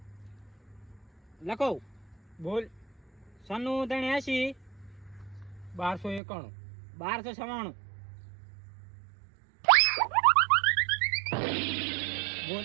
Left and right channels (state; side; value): drops out; left; at 6.2 s